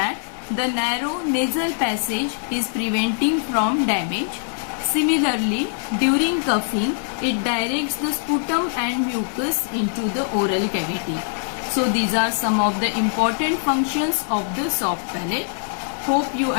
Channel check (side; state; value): right; silent; digital silence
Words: the narrow nasal passage is preventing from damage. Similarly, during coughing, it directs the sputum and mucus into the oral cavity. So these are some of the important functions of the soft palate. Hope you